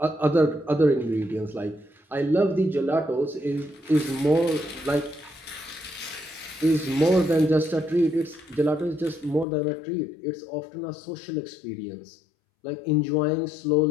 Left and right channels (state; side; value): drops out; right; at 9.5 s